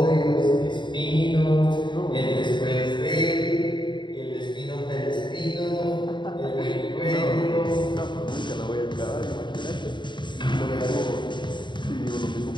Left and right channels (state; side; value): late; right; 0.22 ms